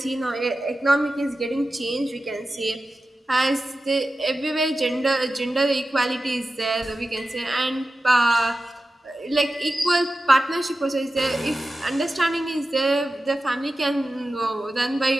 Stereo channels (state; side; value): normal; both; correlation 0.93